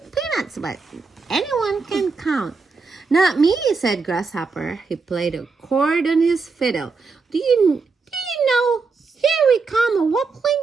peanuts, but anyone can count. Not me, said Grasshopper. He played a chord on his fiddle. Do you know? Here we come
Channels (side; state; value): left; quieter; 4.5 dB